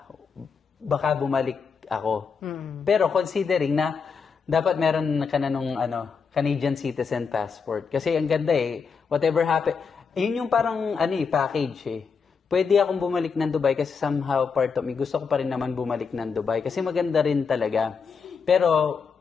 Baka bumalik ako. Pero considering na dapat meron ka na nung Canadian citizen passport. Kasi ang ganda whatever happen, yun yung parang package Pwede akong bumalik ng Dubai kasi somehow part of me, gusto ko pa rin naman bumalik ng Dubai kasi maganda rin talaga. Pero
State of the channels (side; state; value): right; quieter; 5.7 dB